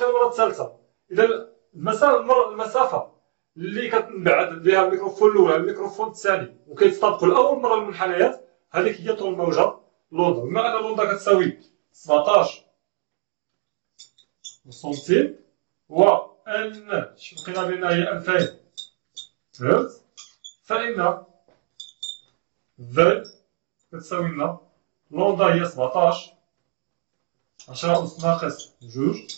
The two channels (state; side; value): silent; left; digital silence